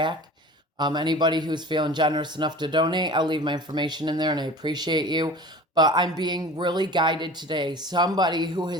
Anybody who's feeling generous enough to donate, I'll leave my information in there and I appreciate you. But I'm being really guided today. Somebody who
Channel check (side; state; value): both; normal; correlation 0.40